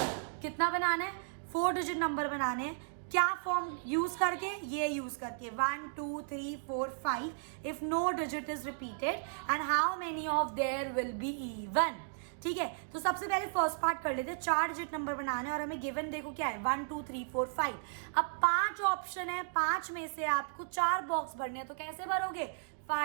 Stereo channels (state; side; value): silent; left; digital silence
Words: कितना बनाना है, 4 डिजिट नंबर बनाने हैं। क्या फॉर्म यूज करके, ये यूज करके 1 2 3 4 5 if no digit is repeated and how many of there will be even. ठीक है, तो सबसे पहले फर्स्ट पार्ट कर लेते हैं। 4 डिजिट नंबर बनाने और हमें गिवन देखो क्या है, 1 2 3 4 5। अब 5 ऑप्शन है, 5 में से आपको 4 बॉक्स भरने हैं, तो कैसे भरोगे,